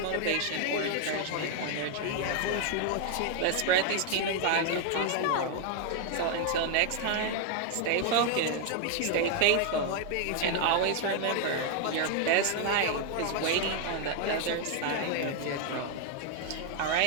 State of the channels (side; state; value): both; different; correlation 0.00